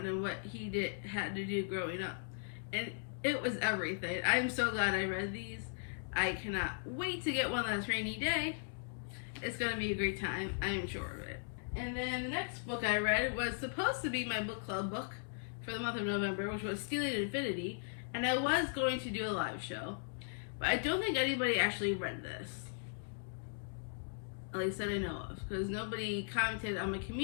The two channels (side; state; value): right; silent; digital silence